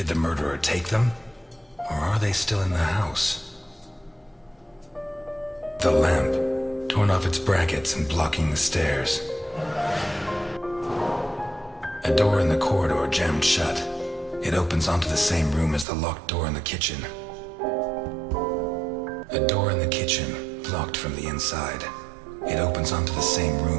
the murderer take them? Or are they still in the house? The lamp, torn off its brackets and blocking the stairs. A door in the corridor jammed shut. It opens onto the same room as the locked door in the kitchen. A door in the kitchen, locked from the inside. It opens onto the same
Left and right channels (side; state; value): left; drops out; at 15.9 s